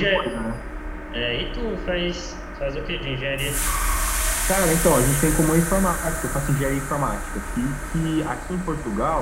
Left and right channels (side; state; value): both; identical; correlation 1.00